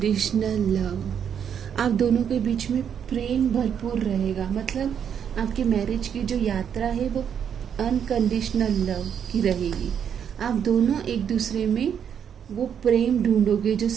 लव, आप दोनों के बीच में प्रेम भरपूर रहेगा। मतलब आपकी मैरिज की जो यात्रा है वो अनकंडीशनल लव की रहेगी। आप दोनों एक दूसरे में वो प्रेम ढूंढोगे, जो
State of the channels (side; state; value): left; quieter; 8.2 dB